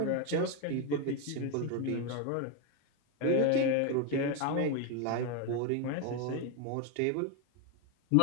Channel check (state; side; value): different; both; correlation 0.01